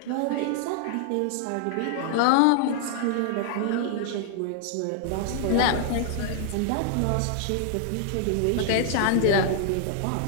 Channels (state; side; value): different; both; correlation 0.00